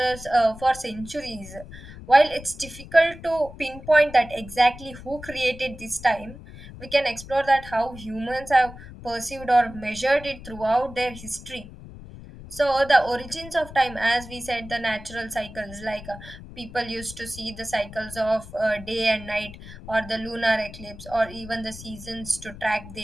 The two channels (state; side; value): noise; left; rumble, 15 dB below the sound